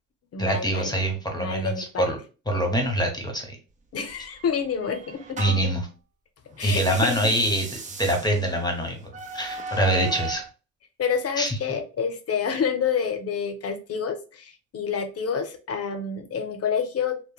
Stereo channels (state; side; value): normal; both; correlation 0.13